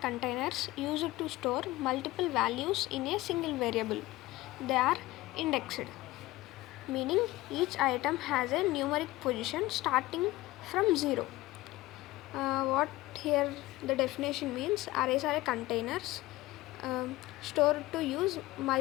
used to store multiple values in a single variable. They are indexed, meaning each item has a numeric position starting from 0. What here the definition means, arrays are containers stored to use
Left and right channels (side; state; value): right; quieter; 18.4 dB